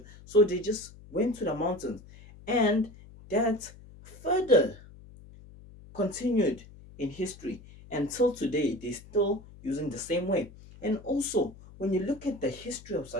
so they just went to the mountains, and that further continued in history until today. They're still using the same way. And also, when you look at the history of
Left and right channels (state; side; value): noise; left; hum, 20 dB below the sound